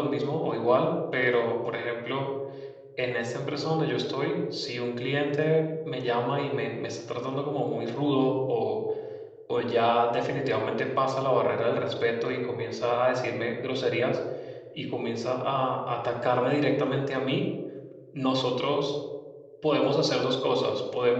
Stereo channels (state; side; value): identical; both; correlation 1.00